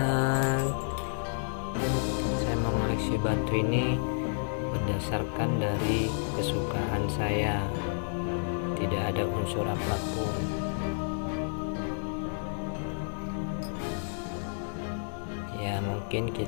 saya mengoleksi batu ini berdasarkan dari kesukaan saya, tidak ada unsur apapun. Ya mungkin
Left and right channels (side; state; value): right; silent; digital silence